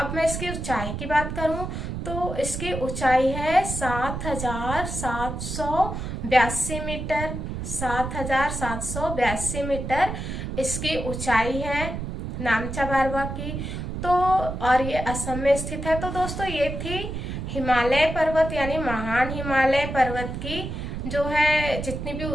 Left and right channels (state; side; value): noise; right; rumble, 5 dB below the sound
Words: मैं इसकी ऊंचाई की बात करूं तो इसकी ऊंचाई है 7,782 मीटर। 7,782 मीटर इसकी ऊंचाई है नामचा बारवा की। तो और ये असम में स्थित है। तो दोस्तों, ये थी हिमालय पर्वत यानी महान हिमालय पर्वत की जो है जितनी भी